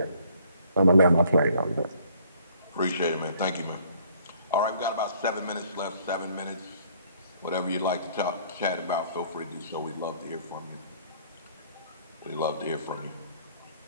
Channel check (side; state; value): both; inverted; correlation -0.60